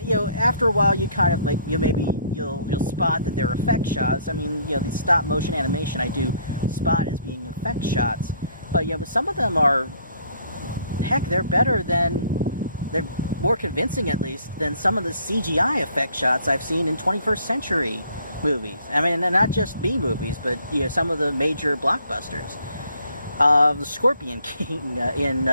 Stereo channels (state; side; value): inverted; both; correlation -0.62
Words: a while, you kind of you'll spot that they're effect shots. I mean, these stop motion animation I do spot as being effect shots, but but some of them are, heck, they're more convincing at least than some of the CGI effect shots I've seen in 21st century movies. I mean, not just B movies, but some of the major blockbusters. The Scorpion King in